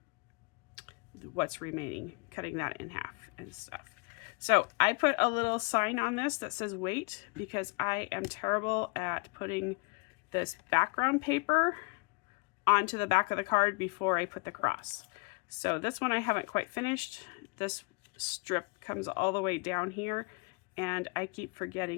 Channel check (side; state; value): right; quieter; 30.2 dB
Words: what's remaining, cutting that in half and stuff. So I put a little sign on this that says wait, because I am terrible at putting this background paper onto the back of the card before I put the cross. So this one I haven't quite finished. This strip comes all the way down here, and I keep